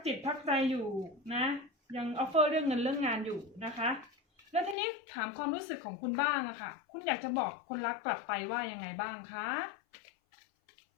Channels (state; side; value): drops out; right; at 4.8 s